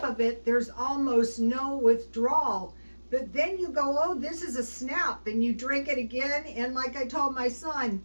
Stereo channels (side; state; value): both; inverted; correlation -1.00